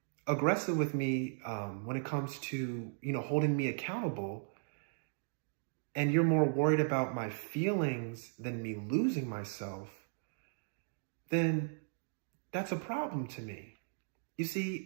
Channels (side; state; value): left; silent; digital silence